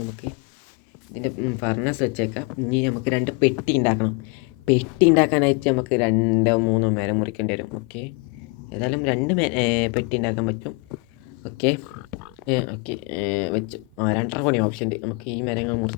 ഇതിൻ്റെ ഫർണസ് വെച്ചേക്കാം. ഇനി നമുക്ക് 2 പെട്ടി ഉണ്ടാക്കണം. പെട്ടി ഉണ്ടാക്കാനായിട്ട് നമുക്ക് 2-3 മരം മുറിക്കേണ്ടി വരും. ഓക്കെ, ഏതായാലും 2 പെട്ടി ഉണ്ടാക്കാൻ പറ്റും. ഓക്കെ ഓക്കെ വെച്ചു. 2 കൂടി ഓപ്ഷൻ ഉണ്ട്. നമുക്ക് ഈ മരങ്ങൾ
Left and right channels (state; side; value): quieter; right; 30.5 dB